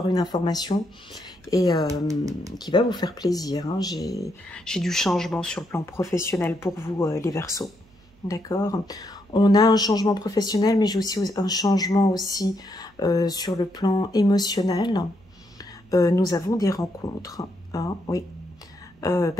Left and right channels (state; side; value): noise; right; hum, 30 dB below the sound